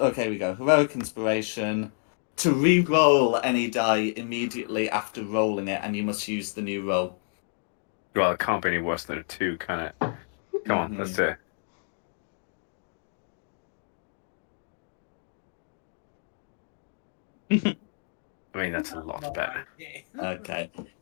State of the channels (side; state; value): right; silent; digital silence